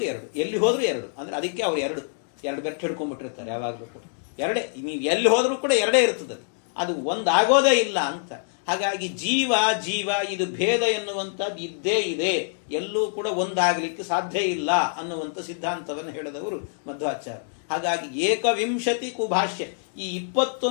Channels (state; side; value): silent; right; digital silence